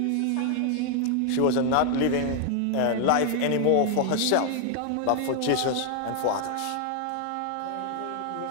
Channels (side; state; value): both; different; correlation 0.00